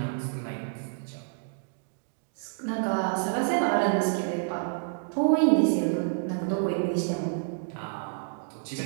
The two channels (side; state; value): left; silent; digital silence